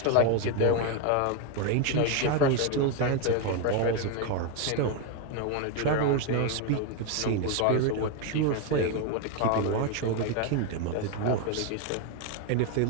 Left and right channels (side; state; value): both; different; correlation 0.01